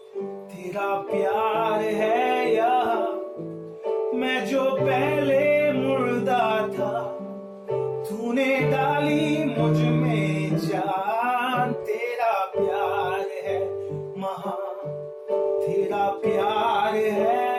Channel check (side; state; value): both; identical; correlation 1.00